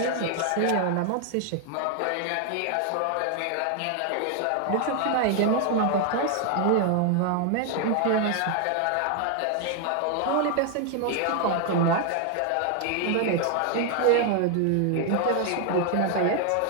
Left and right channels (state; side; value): different; both; correlation 0.00